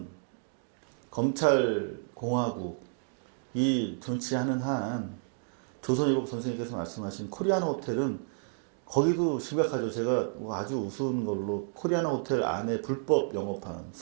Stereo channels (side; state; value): left; silent; digital silence